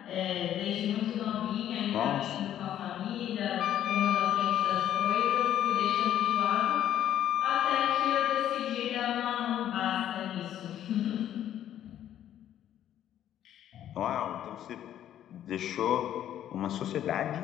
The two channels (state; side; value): quieter; right; 11.1 dB